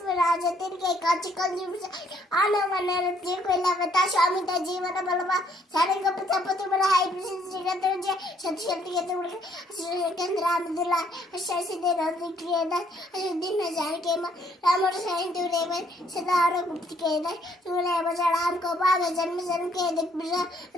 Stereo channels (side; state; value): both; normal; correlation 0.66